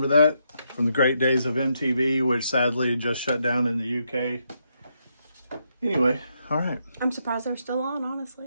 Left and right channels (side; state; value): both; inverted; correlation -0.79